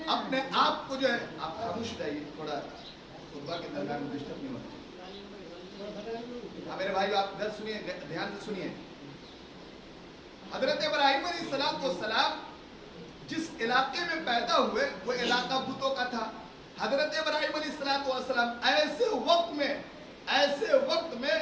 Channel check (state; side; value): identical; both; correlation 1.00